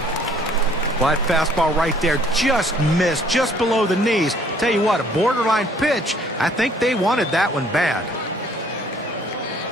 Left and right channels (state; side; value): normal; both; correlation 0.59